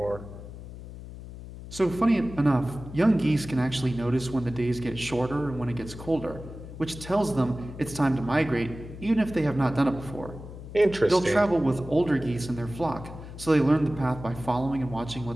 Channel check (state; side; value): noise; left; hum, 13 dB below the sound